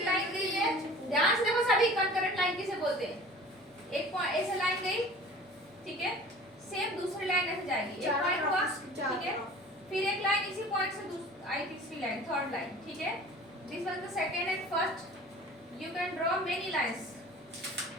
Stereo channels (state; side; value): normal; both; correlation 0.43